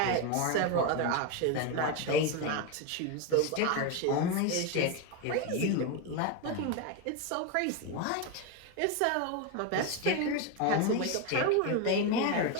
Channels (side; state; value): both; different; correlation 0.03